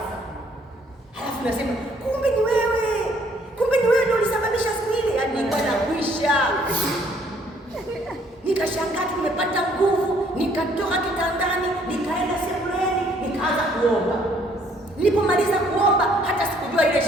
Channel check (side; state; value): both; normal; correlation 0.63